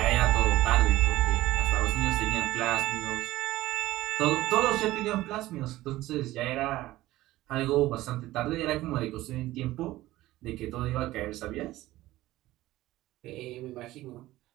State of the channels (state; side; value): quieter; left; 16.7 dB